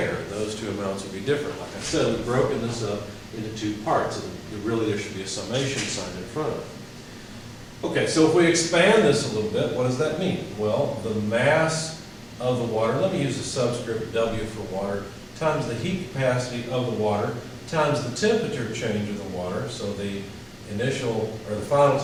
Those two amounts would be different. Like I said, we've broken this up into 2 parts, and really there should be a summation sign in front of it. Okay, so if we expand this a little bit, what does that mean? Well, the mass of the water, let me use the subscript W for water, times the heat capacity of the water, times the temperature change of the water, so the initial, or the final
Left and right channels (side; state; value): both; identical; correlation 1.00